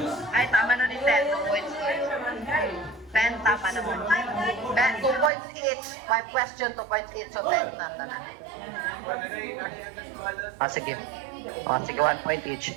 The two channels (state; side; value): drops out; left; at 5.3 s